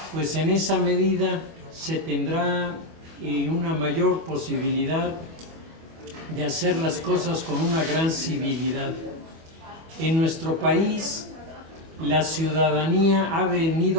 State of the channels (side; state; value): left; late; 25 ms